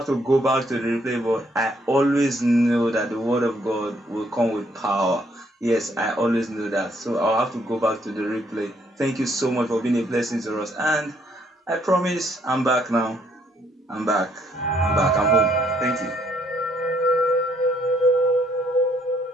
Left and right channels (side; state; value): both; normal; correlation 0.69